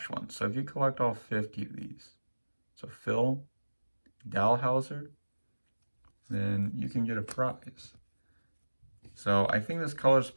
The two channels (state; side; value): inverted; both; correlation -1.00